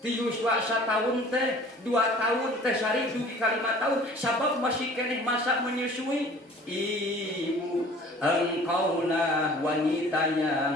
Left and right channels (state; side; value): normal; both; correlation 0.48